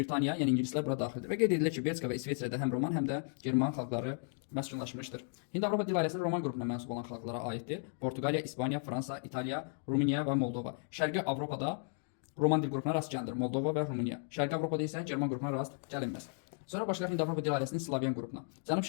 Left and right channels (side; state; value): right; silent; 55 dB below the other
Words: yəni ingilislər bura daxildir. Və qeyd edilir ki, Belçika və İsveçrədə həm Roman, həm də German xalqları məskunlaşmışdır. Hind-Avropa dil ailəsinin Roman qrupuna mənsub olan xalqlara aiddir. Portuqaliya, İspaniya, Fransa, İtaliya, Rumıniya və Moldova. Şərqi Avropada Roman dil qrupuna rast gəlinir. Moldova və Rumıniya. Şərqi Avropada isə German qrupuna rast gəlinməz. Sonra başlayaq Hind-Avropa dil ailəsinin Slavyan qrupuna.